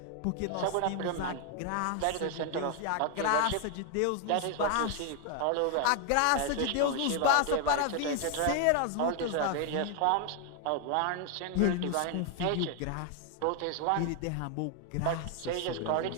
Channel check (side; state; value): both; different; correlation 0.00